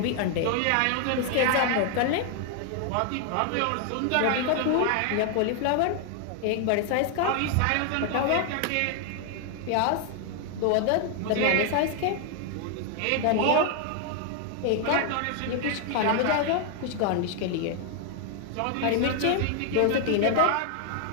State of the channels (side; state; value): both; different; correlation 0.00